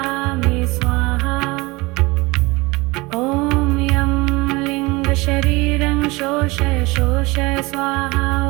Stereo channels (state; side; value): quieter; left; 23.4 dB